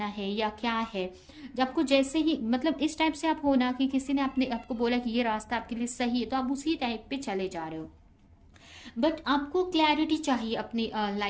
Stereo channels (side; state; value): both; identical; correlation 1.00